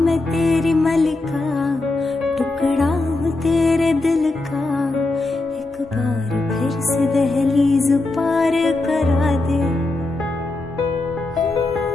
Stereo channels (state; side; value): quieter; right; 3.0 dB